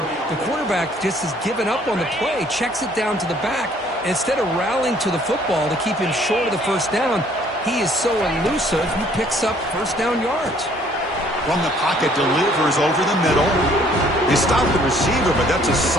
The quarterback just has given up on the play, checks it down to the back. Instead of rallying to the football to keep him short of the first down, he is so elusive, he picks up first down yards. From the pocket, delivers over the middle. They stop the receiver, but that's a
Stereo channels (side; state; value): both; normal; correlation 0.60